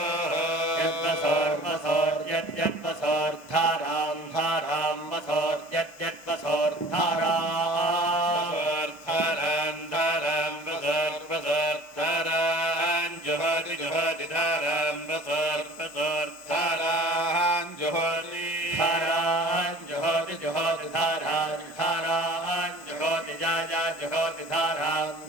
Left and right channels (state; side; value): normal; both; correlation 0.45